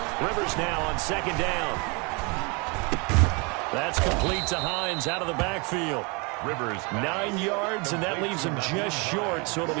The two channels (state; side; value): quieter; left; 30.7 dB